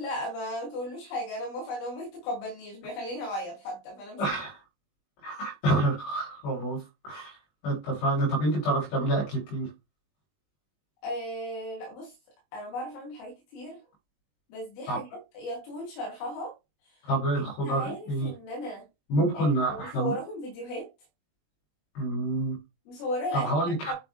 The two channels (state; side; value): late; right; 20 ms